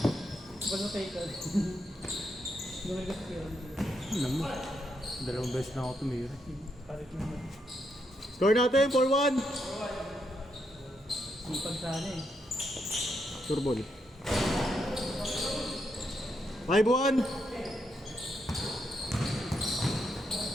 Bago tayo ka. Gawin ka sa kaya. Alam mo, dalawang beses na ako tumira. Palit naman. Score natin, 4-1. Sipag sana eh. Sure ball. 5-1.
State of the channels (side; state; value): both; normal; correlation 0.80